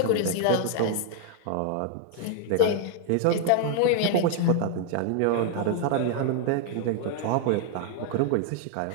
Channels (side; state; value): both; different; correlation -0.01